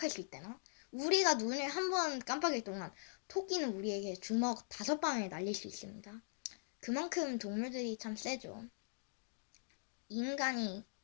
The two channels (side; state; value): right; silent; digital silence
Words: 수 있대나? 우리가 눈을 한 번 깜빡일 동안 토끼는 우리에게 주먹 5방을 날릴 수 있습니다. 그만큼 동물들이 참 세죠. 인간이